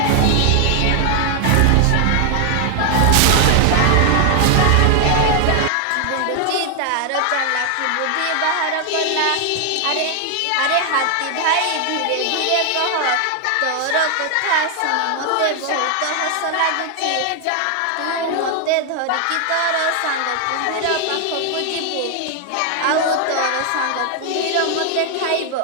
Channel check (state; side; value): different; both; correlation 0.00